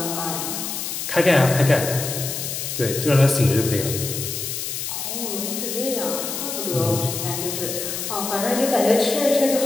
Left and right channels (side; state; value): left; noise; hiss, 4 dB below the sound